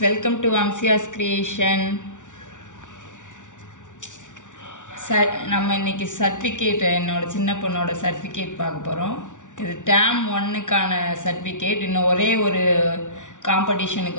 welcome to Amsia's Creation. நம்ம இன்னைக்கு certificate என்னோட சின்ன பொண்ணோட சர்டிஃபிகேட் பார்க்க போகிறோம். இது டேம் 1க்கான சர்டிஃபிகேட். இன்னும் ஒரே ஒரு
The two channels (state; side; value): late; right; 0.87 ms